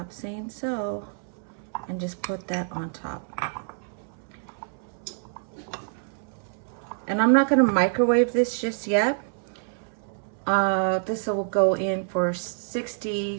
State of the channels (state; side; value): silent; left; 60 dB below the other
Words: Saying So, and just put that on top. And I'm not going to microwave this just yet. This will go in for 60